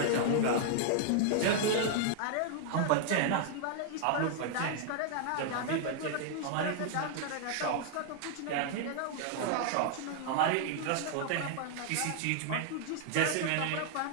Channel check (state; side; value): different; both; correlation 0.00